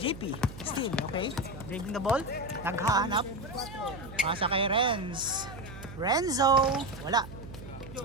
Steal, okay. Dribbling the ball. Naghahanap. Pasa kay Renz. Renzo. Wala.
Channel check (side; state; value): right; noise; hum, 13 dB below the sound